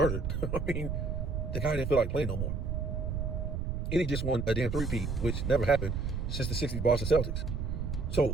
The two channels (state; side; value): noise; right; rumble, 2 dB below the sound